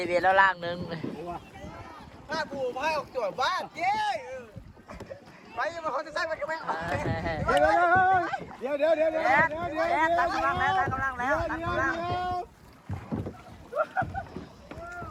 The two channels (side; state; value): both; identical; correlation 1.00